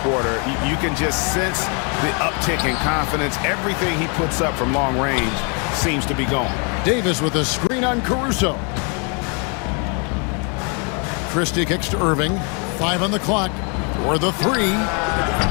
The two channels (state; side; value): quieter; right; 36.0 dB